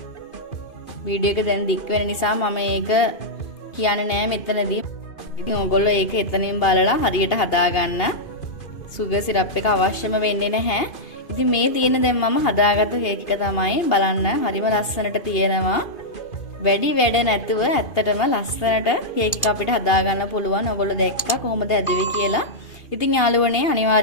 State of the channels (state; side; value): late; right; 2.5 ms